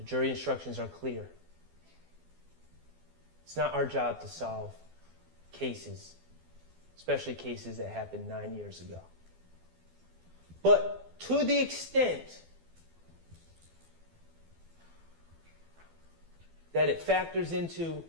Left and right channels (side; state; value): left; late; 12 ms